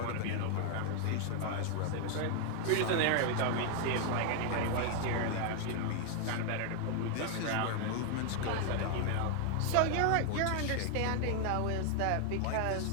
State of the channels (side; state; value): both; different; correlation 0.00